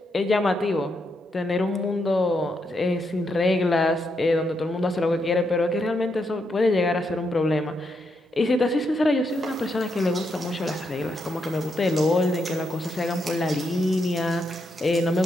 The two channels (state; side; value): normal; both; correlation 0.80